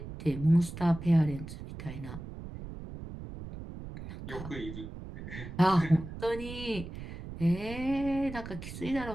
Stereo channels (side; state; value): right; noise; rumble, 11 dB below the sound